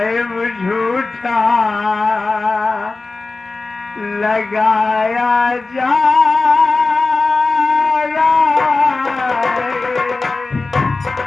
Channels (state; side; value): quieter; right; 3.6 dB